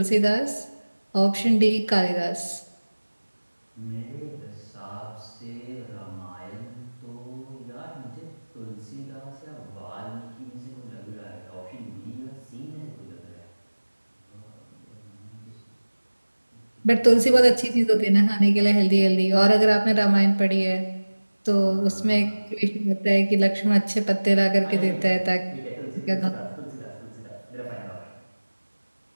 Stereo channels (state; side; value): inverted; both; correlation -1.00